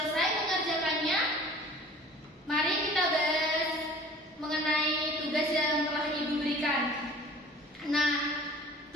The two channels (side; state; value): both; normal; correlation 0.46